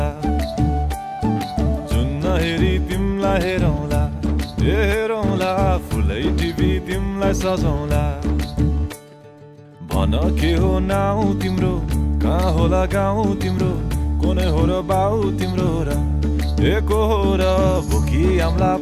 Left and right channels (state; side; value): identical; both; correlation 1.00